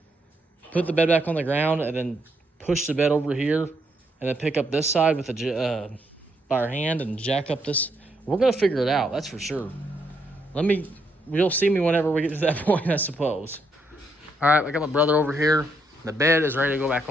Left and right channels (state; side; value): normal; both; correlation 0.76